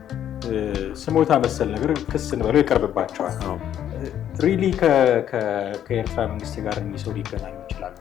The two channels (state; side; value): quieter; right; 10.4 dB